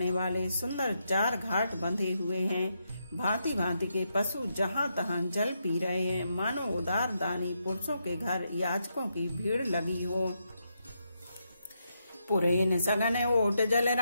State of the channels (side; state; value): both; inverted; correlation -0.81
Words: वाले सुंदर 4 घाट बंधे हुए हैं। भांति भांति के पशु जहाँ तहाँ जल पी रहे हैं, मानो उदार दानी पुरुषों के घर याचकों की भीड़ लगी हो। पुरेन सगन ओट जल